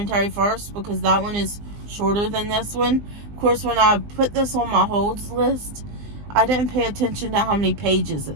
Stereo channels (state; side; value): late; left; 20 ms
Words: first, because that one is shorter than this one. Of course, when I put this on my holds list, I didn't pay attention to how many pages